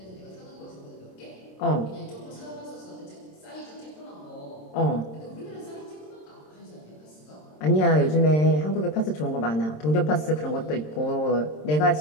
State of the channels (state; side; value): late; right; 26 ms